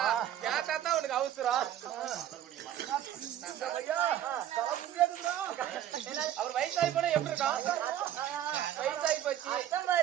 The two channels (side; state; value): left; quieter; 11.4 dB